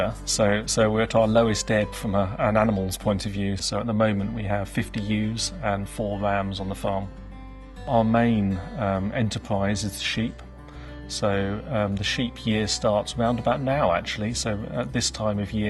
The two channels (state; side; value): identical; both; correlation 1.00